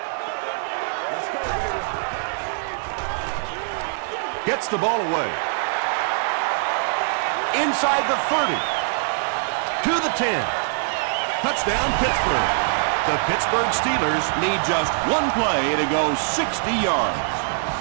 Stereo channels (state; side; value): silent; left; digital silence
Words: Gets the ball away. Inside the 30. To the 10. Touchdown, Pittsburgh. The Pittsburgh Steelers need just one play to go 60 yards.